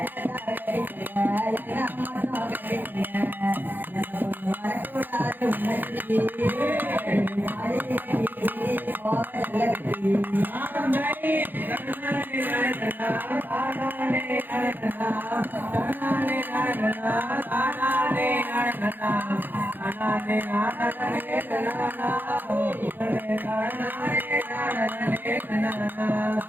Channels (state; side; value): late; left; 0.090 ms